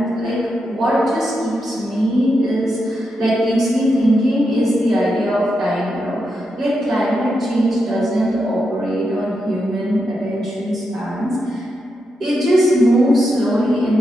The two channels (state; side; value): normal; both; correlation 0.85